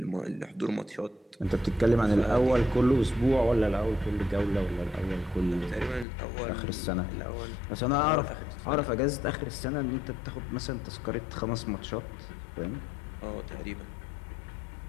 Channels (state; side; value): drops out; right; at 6.1 s